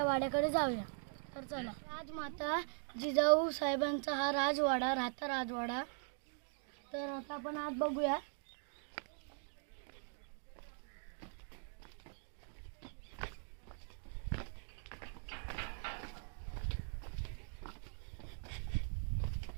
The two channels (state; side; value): silent; left; 50 dB below the other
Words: वाड्याकडे जाऊया. तर चला. राजमाता जिजाऊ साहेबांचा हा राजवाडा, राहता राजवाडा. तर आता आपण आत बघूया.